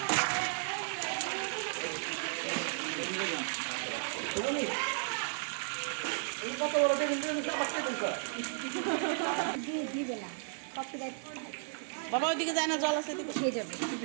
দিবে না কপিরাইট। বাবা ওইদিকে যায় না, জল আছে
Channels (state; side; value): silent; left; digital silence